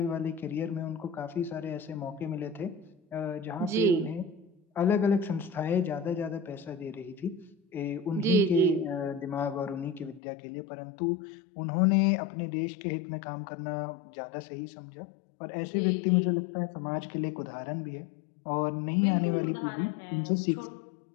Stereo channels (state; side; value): drops out; right; at 10.2 s